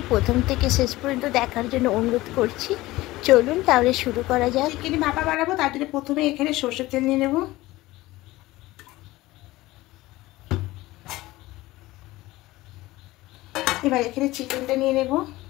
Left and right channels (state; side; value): quieter; right; 18.4 dB